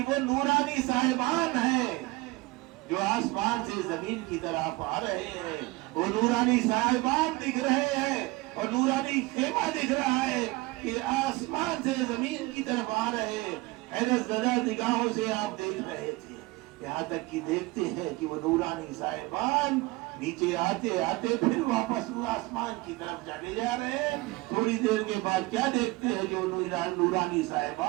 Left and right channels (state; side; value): quieter; left; 21.6 dB